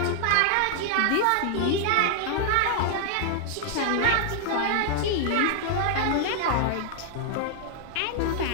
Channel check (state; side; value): different; both; correlation -0.01